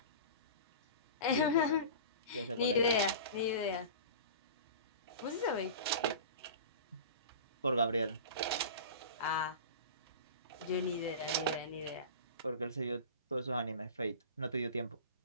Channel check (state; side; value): inverted; both; correlation -0.34